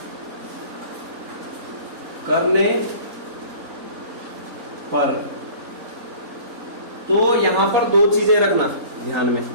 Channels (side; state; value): left; late; 4.1 ms